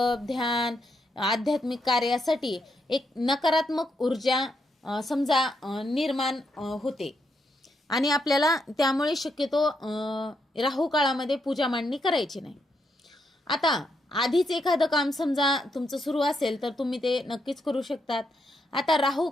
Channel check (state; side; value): normal; both; correlation 0.79